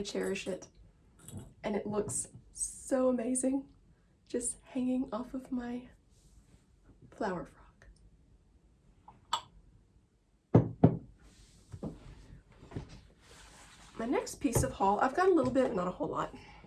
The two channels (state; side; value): identical; both; correlation 1.00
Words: cherish it. And it looks so amazing. Just hanging off of my flower frog. my next piece of haul, I've got a little bit, not a whole lot.